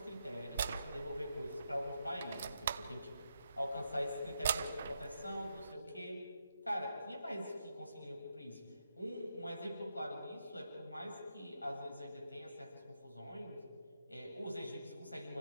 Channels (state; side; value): inverted; both; correlation -0.82